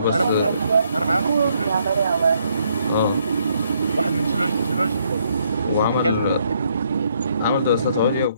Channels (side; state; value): both; inverted; correlation -0.71